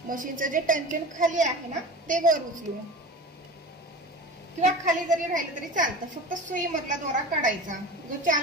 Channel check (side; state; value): both; normal; correlation 0.34